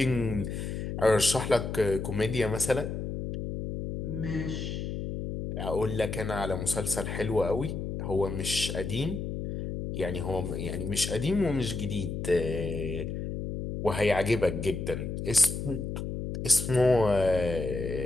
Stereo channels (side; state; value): left; noise; hum, 4 dB below the sound